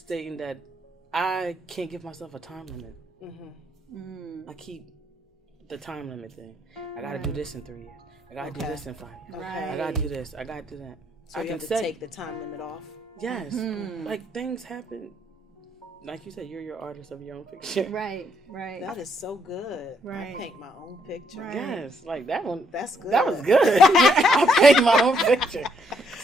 that I can't give myself a time limit. Mm-hmm. I keep the time limit thing. I gotta do this in 3 years. I gotta do this in 5 years. Right. I gotta do this. I gotta do that. So you have to take the time limit off. Yes. Like things happen. Like you said, you're your artist of your own picture. Right. That is so good. Right. I paint my own picture. Right. Yes, like that one. That's good. That was good. I paint my own picture.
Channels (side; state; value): both; normal; correlation 0.72